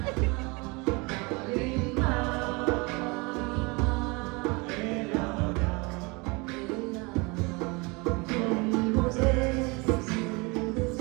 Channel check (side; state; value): left; quieter; 27.5 dB